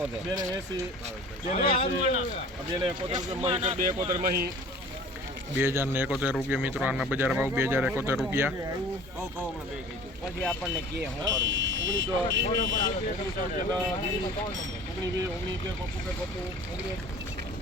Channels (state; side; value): normal; both; correlation 0.45